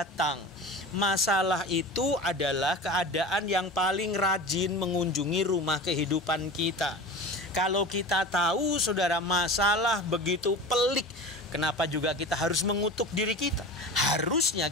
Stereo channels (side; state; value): both; normal; correlation 0.33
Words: Masalah itu adalah keadaan yang paling rajin mengunjungi rumah kehidupan kita. Kalau kita tahu saudara masalah begitu pelik, kenapa juga kita harus mengutuk diri kita? Harusnya